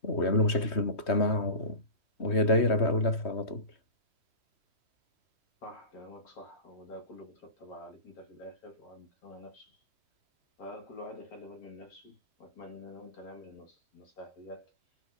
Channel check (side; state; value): right; late; 3.2 ms